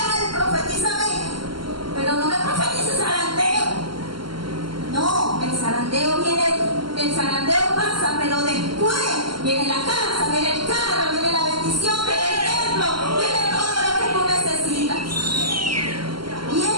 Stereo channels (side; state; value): left; late; 0.73 ms